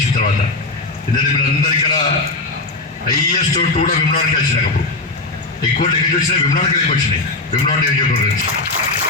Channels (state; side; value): quieter; right; 3.3 dB